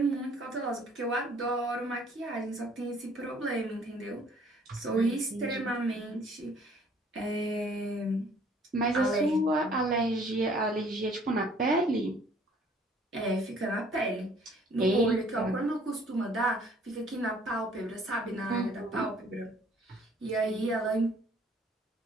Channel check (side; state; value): both; normal; correlation 0.57